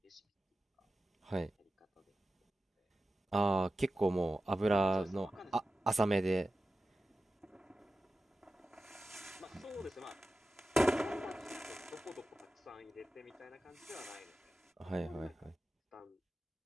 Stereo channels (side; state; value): both; normal; correlation 0.93